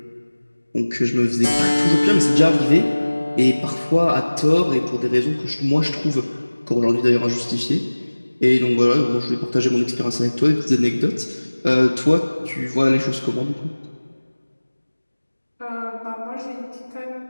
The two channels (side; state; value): both; inverted; correlation -1.00